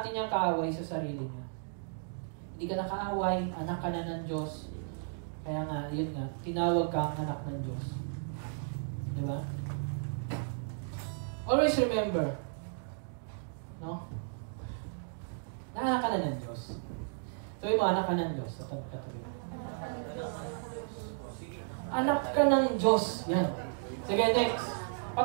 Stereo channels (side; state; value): left; silent; digital silence